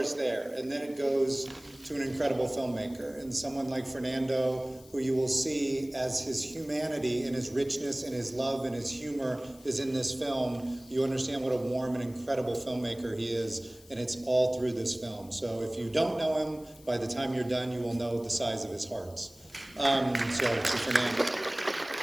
there, and then it goes to an incredible filmmaker, and someone like Fernando, who you will see as his humanity and his richness and his love and his humor is in this film. You understand what a warm and incredible filmmaker he is, and it's all through this film. So if you don't know him, by the time you're done, you will know the size of his hearts. So to Fernando.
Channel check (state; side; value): noise; left; hiss, 23 dB below the sound